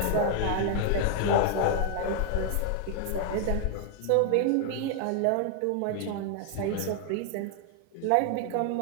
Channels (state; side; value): different; both; correlation 0.00